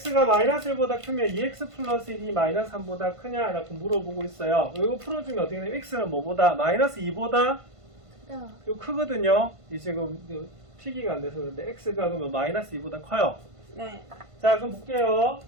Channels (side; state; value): left; late; 1.5 ms